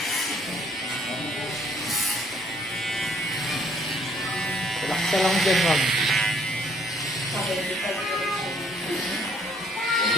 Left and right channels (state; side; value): normal; both; correlation 0.63